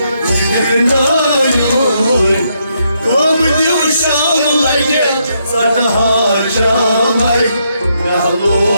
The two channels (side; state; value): both; inverted; correlation -0.77